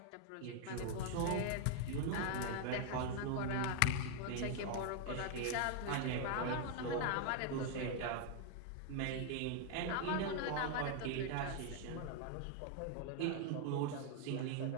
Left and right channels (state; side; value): different; both; correlation 0.00